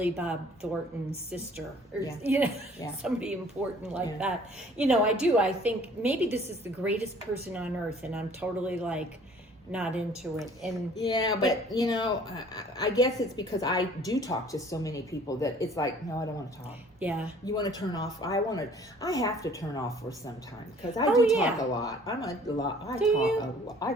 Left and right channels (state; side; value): normal; both; correlation 0.54